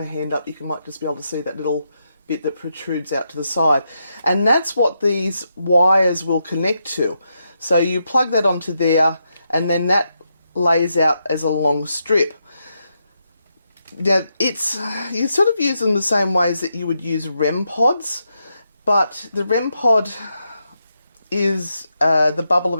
hand up, you might just be able to see that little bit that protrudes out to the side, and that's what these wires will connect to. So you plug that onto there, and then that lays out as a long strip. Now, you sort of use them the same ways that you would use REM pods, but the REM pod is the bubble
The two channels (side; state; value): both; inverted; correlation -0.83